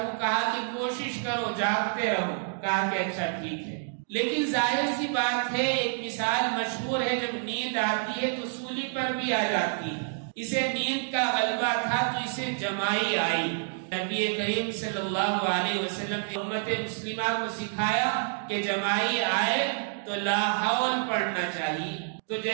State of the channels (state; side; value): silent; left; digital silence